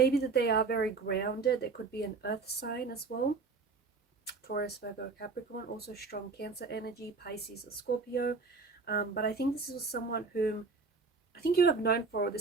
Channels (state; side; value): quieter; left; 4.3 dB